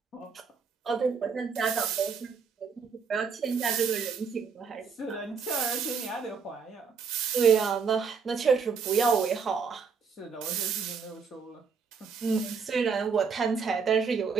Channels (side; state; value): left; quieter; 5.7 dB